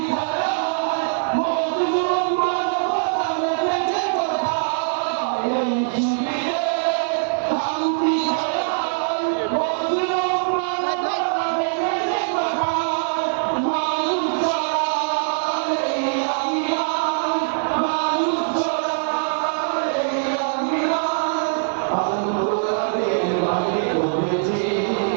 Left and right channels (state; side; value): silent; left; digital silence